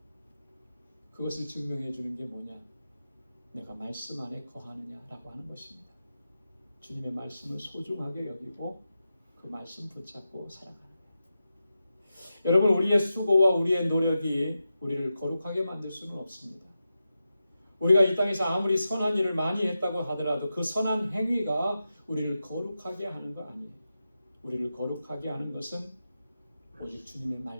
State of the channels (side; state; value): both; inverted; correlation -0.90